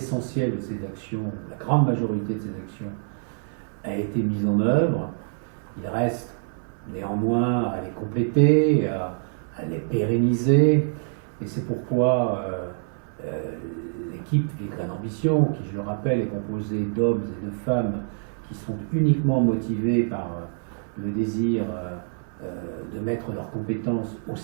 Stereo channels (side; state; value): left; silent; digital silence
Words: de ces actions, la grande majorité de ces actions, a été mise en œuvre. Il reste néanmoins à les compléter, à les pérenniser, et c'est pourquoi l'équipe Villecresnes Ambition, qui je le rappelle est composée d'hommes et de femmes qui sont uniquement motivés par le désir de mettre leurs compétences au